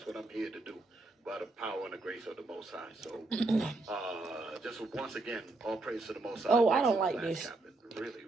what I'm here to do by the power and the grace of the Most High. So just once again, all praise to the Most High. Oh, I don't Excellent like class, this. Captain. Really,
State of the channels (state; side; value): quieter; left; 3.2 dB